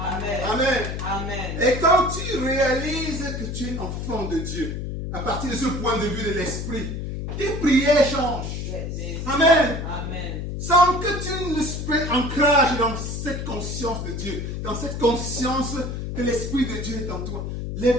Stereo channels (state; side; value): noise; left; hum, 5 dB below the sound